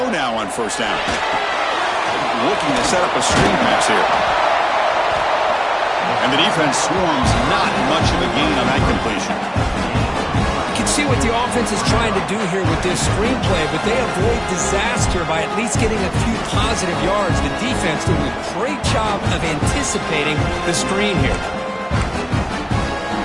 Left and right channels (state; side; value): identical; both; correlation 1.00